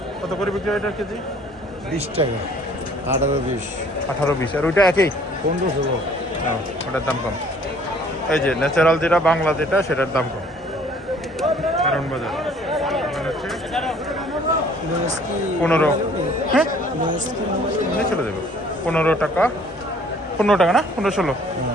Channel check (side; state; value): both; normal; correlation 0.56